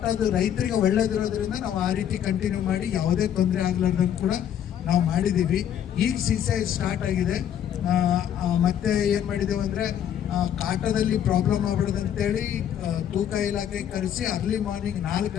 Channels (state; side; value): quieter; right; 9.8 dB